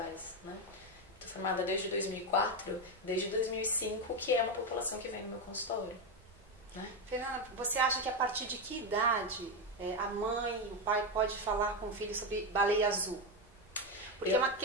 Né? Estou formada desde 2004, desde 2005, que é uma população que vem no meu consultório. Né? Fernanda, você acha que a partir de que idade a mãe, o pai pode falar com o filho sobre baleia azul? Porque é uma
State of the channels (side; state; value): right; noise; rumble, 26 dB below the sound